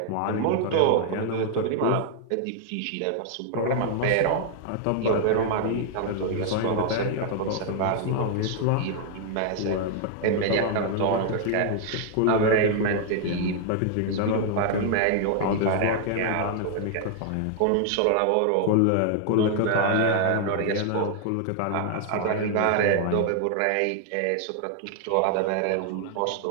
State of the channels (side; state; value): both; different; correlation 0.00